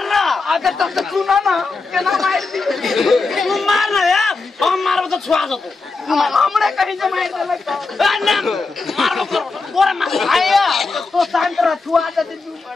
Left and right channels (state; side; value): quieter; right; 4.0 dB